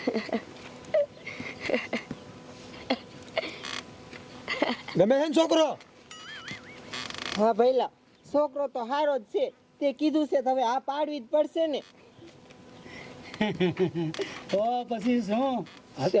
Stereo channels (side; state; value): both; identical; correlation 1.00